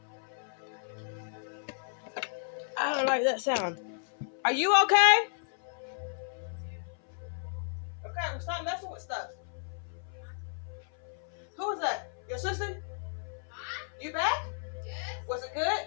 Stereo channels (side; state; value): right; silent; 56 dB below the other